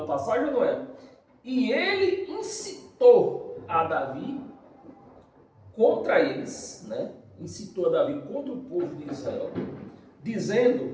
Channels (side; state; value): both; identical; correlation 1.00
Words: passagem, não é? E ele incitou a Davi contra eles, né? Incitou a Davi contra o povo de Israel,